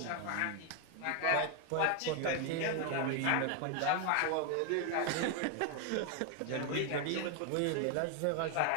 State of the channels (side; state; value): both; different; correlation 0.01